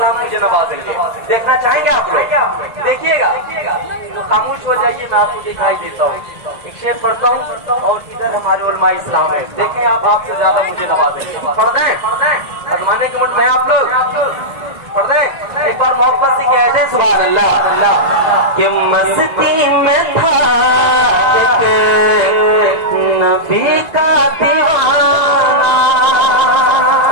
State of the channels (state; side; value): late; left; 1.9 ms